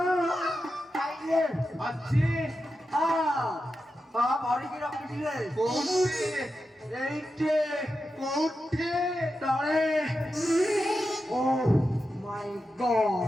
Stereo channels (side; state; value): both; normal; correlation 0.90